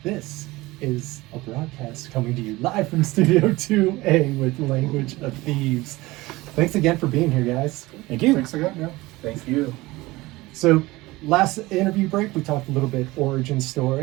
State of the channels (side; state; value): left; quieter; 20.2 dB